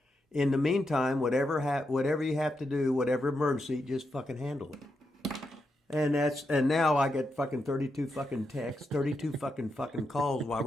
In the meantime, whatever you have to do, whatever emergency, just fucking handle it. And now I get fucking 32 fucking texts, 32 fucking calls while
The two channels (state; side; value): normal; both; correlation 0.85